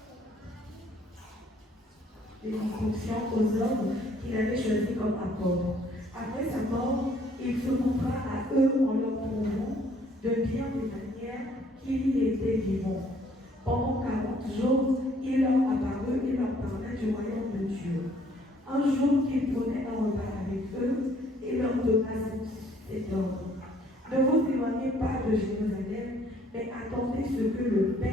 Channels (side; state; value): both; normal; correlation 0.62